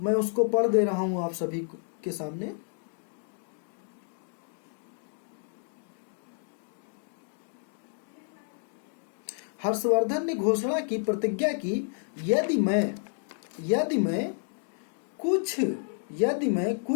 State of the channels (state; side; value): silent; right; digital silence